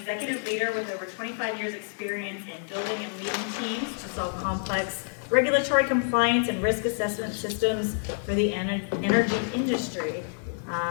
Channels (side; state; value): right; silent; 60 dB below the other